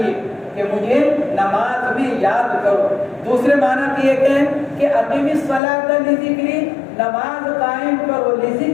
یہ کہ مجھے نماز میں یاد کرو، دوسرے معنی یہ کہ اقیم الصلاۃ لذکری، نماز قائم کرو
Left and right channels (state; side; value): drops out; right; at 5.6 s